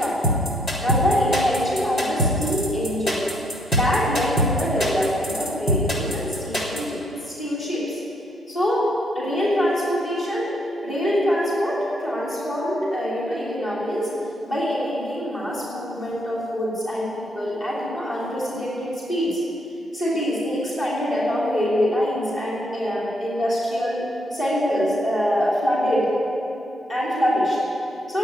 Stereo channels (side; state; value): both; normal; correlation 0.72